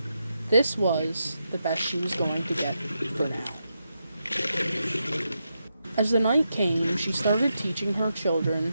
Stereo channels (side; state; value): both; inverted; correlation -0.85